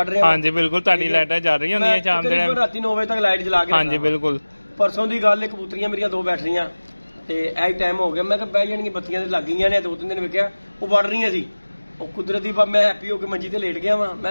ਰਿਹਾ। ਹਾਂਜੀ ਬਿਲਕੁਲ, ਤੁਹਾਡੀ ਲਾਈਟਾਂ ਚੱਲ ਰਹੀਆਂ ਹੁੰਦੀਆਂ ਸ਼ਾਮ ਦੇ ਟਾਈਮ, ਰਾਤੀ 9 ਵਜੇ ਤੱਕ ਲਾਈਟ ਜਲਾ ਕੇ। ਹਾਂਜੀ ਬਿਲਕੁਲ। ਪਰਸੋਂ ਦੀ ਗੱਲ ਹੈ, ਕਬੂਤਰੀਆਂ ਮੇਰੀਆਂ 2 ਬੈਠ ਰਹੀਆਂ ਤੇ ਇਹ ਟਾਈਮ ਹੋ ਗਿਆ। ਮੈਂ ਕਿਹਾ ਬਹਿ ਜਾਣਗੀਆਂ, ਬੱਤੀਆਂ ਤੇ ਲੱਗ ਗਈਆਂ ਨੇ। 2-3 ਦਿਨ ਵੇਖਿਆ ਉਹ ਵੜ ਰਹੀਆਂ ਸੀ। ਉਹ ਕੁਦਰਤੀ ਮੈਂ ਹੈਪੀ ਹੋ ਕੇ ਮੰਜੀ ਤੇ ਲੇਟ ਗਿਆ ਵਾਂ।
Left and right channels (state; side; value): inverted; both; correlation -1.00